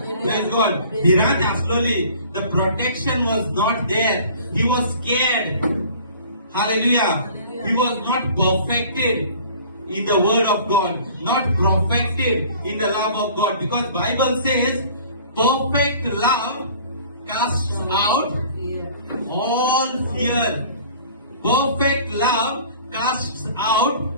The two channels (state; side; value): inverted; both; correlation -0.49